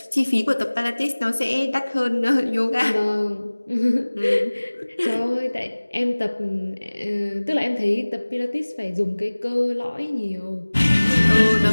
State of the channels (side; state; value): both; inverted; correlation -1.00